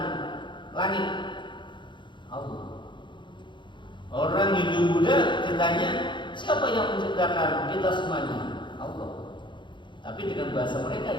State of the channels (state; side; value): late; right; 0.23 ms